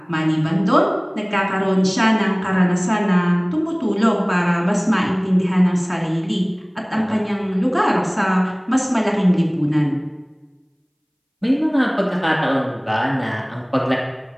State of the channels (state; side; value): identical; both; correlation 1.00